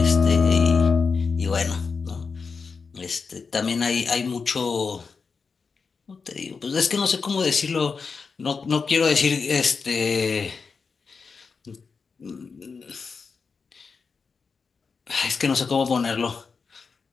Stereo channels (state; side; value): quieter; right; 5.1 dB